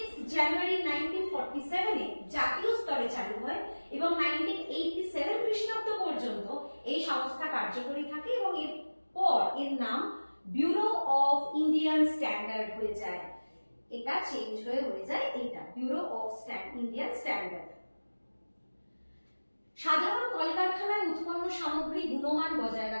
জানুয়ারি 1947 এ জাতীয় স্তরে চালু হয় এবং 1987 খ্রিস্টাব্দ পর্যন্ত এই সংস্থা কার্যকরী থাকে এবং এরপর এর নাম ব্যুরো অফ ইন্ডিয়ান স্ট্যান্ডার্ড হয়ে যায়। এটা চেঞ্জ হয়ে যায় এটা ব্যুরো অফ ইন্ডিয়ান স্ট্যান্ডার্ড। সাধারণ কলকারখানায় উৎপন্ন সামগ্রী গুণমান বজায়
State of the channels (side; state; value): both; inverted; correlation -1.00